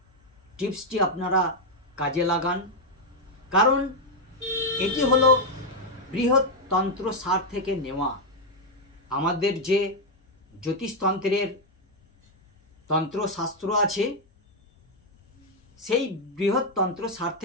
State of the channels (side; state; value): both; normal; correlation 0.01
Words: টিপসটি আপনারা কাজে লাগান, কারণ এটি হলো বৃহত্তন্ত্র সার থেকে নেওয়া। আমাদের যে জ্যোতিষতন্ত্রের তন্ত্রশাস্ত্র আছে সেই বৃহত্তন্ত্র সার